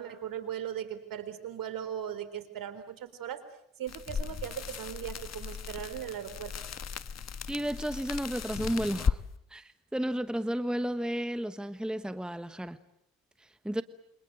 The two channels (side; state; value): both; normal; correlation 0.69